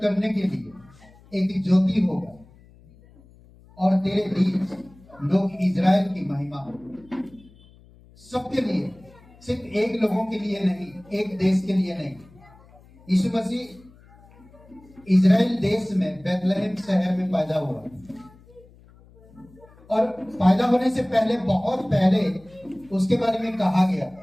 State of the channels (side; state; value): left; noise; hum, 26 dB below the sound